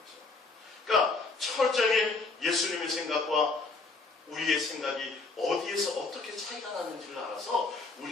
그러니까 철저하게 예수님의 생각과 우리의 생각이 어디에서 어떻게 차이가 나는지를 알아서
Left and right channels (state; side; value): quieter; right; 3.8 dB